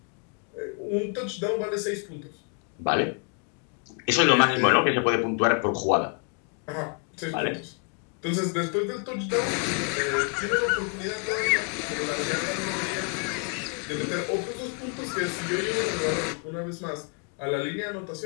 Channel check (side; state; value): right; quieter; 38.3 dB